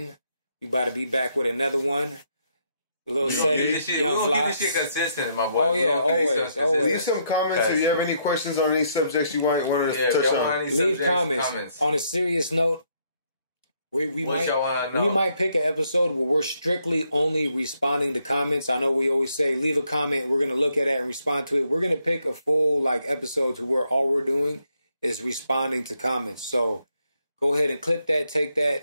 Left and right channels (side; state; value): both; inverted; correlation -0.74